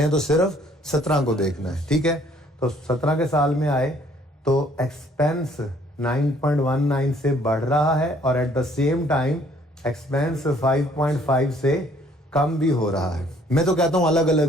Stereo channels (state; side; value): normal; both; correlation 0.61